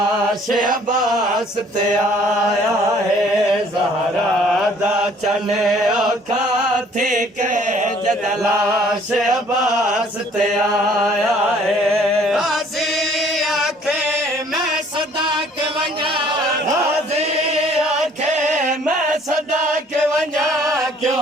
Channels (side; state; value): both; normal; correlation 0.57